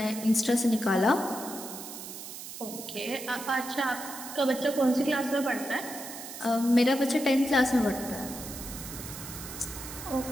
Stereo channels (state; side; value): noise; right; hiss, 11 dB below the sound